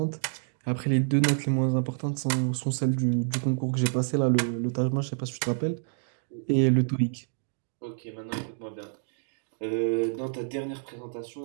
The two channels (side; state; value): left; silent; digital silence